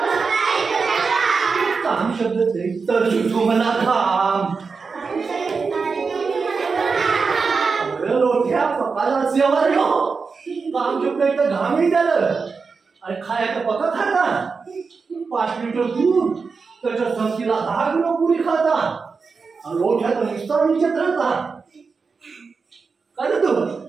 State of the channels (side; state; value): left; quieter; 4.9 dB